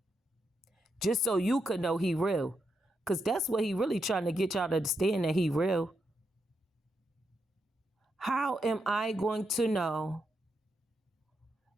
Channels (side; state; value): both; normal; correlation 0.82